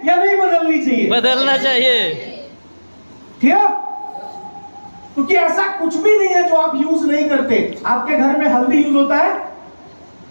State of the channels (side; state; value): both; inverted; correlation -1.00